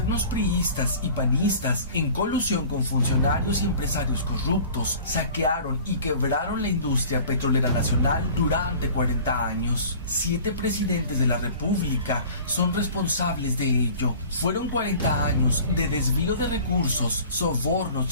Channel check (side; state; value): both; inverted; correlation -0.44